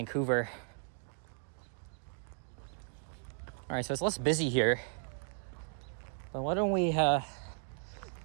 All right, so it's less busy here. But why don't we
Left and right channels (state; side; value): silent; left; 54 dB below the other